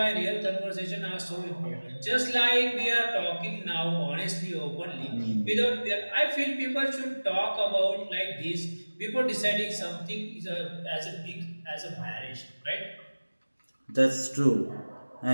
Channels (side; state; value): both; inverted; correlation -1.00